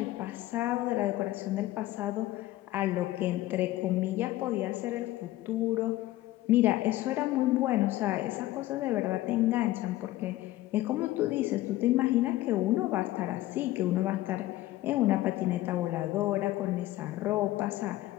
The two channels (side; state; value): right; quieter; 16.1 dB